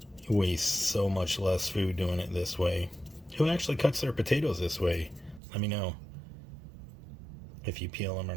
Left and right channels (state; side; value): drops out; left; at 5.4 s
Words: You waste so much less food doing it this way. Who actually cuts their potatoes this way? Let me know if you peel them or